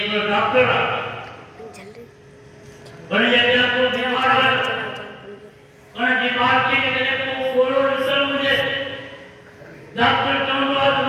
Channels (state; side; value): identical; both; correlation 1.00